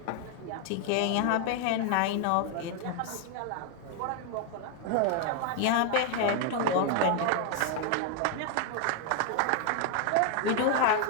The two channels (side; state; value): both; different; correlation 0.01